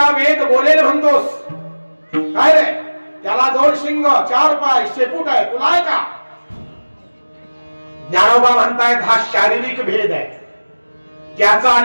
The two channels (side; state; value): both; inverted; correlation -1.00